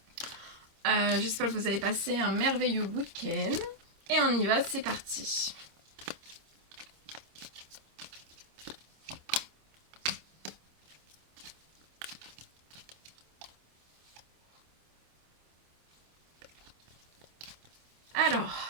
J'espère que vous avez passé un merveilleux week-end. Et on y va, c'est parti.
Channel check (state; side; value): late; left; 26 ms